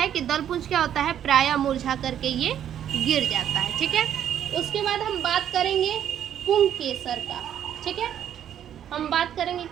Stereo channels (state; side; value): quieter; left; 10.1 dB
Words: कि दलपुंज क्या होता है, प्रायः मुरझा करके ये गिर जाता है, ठीक है। उसके बाद हम बात करेंगे पुंकेसर का, ठीक है। हम बात करेंगे